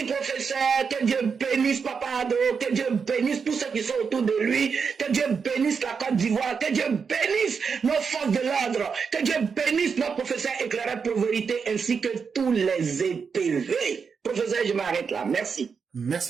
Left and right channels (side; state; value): left; quieter; 5.8 dB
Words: professeur. Que Dieu bénisse Papa Ado. Que Dieu bénisse tous ceux qui sont autour de lui. Que Dieu bénisse la Côte d'Ivoire. Que Dieu bénisse nos forces de l'ordre. Que Dieu bénisse nos professeurs éclairés pour vérité ainsi que tous les EPV. Professeur, je m'arrête là. Merci.